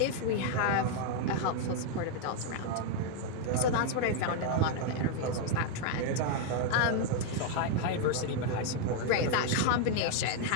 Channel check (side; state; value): both; different; correlation 0.00